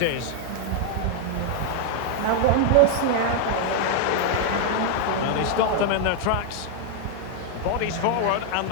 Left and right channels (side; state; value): both; different; correlation 0.00